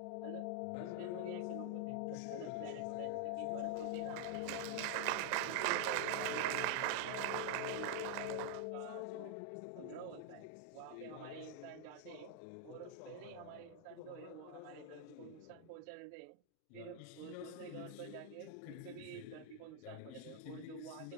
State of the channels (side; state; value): both; different; correlation 0.00